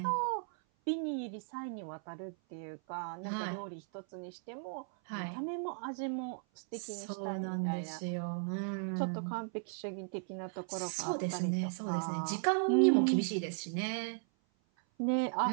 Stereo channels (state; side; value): silent; left; 54 dB below the other